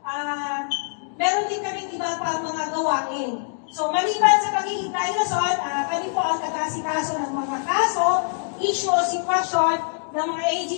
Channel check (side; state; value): right; silent; digital silence